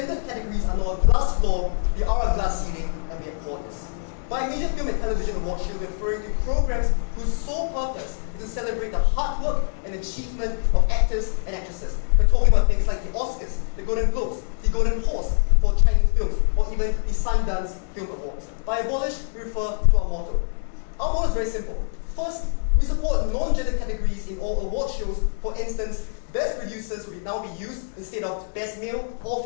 categories are not a glass floor, they are a glass ceiling, and we abhor this. By major film and television awards, she will be referring to programs whose sole purpose is to celebrate the hard work and achievement of actors and actresses. We're talking about things like the Oscars, the Golden Globes, the Golden Horse for Chinese films, or even the Sundance Film Awards. By abolish, we refer to our motto. Our motto is very simple. First, we support non-gender categories in all award shows. For instance, best producers will now be used instead of best male or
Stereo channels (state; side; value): silent; right; digital silence